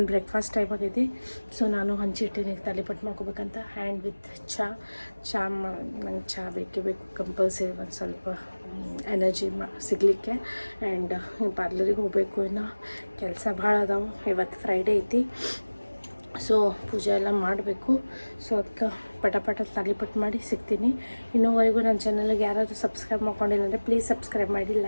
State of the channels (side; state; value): both; inverted; correlation -1.00